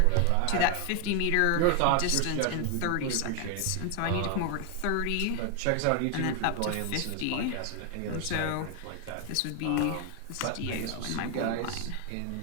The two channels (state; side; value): different; both; correlation 0.00